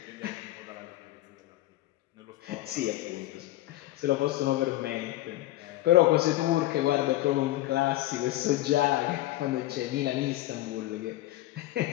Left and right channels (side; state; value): right; quieter; 15.9 dB